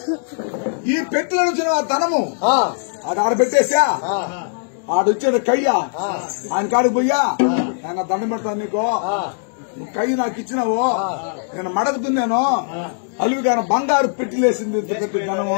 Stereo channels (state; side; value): silent; right; digital silence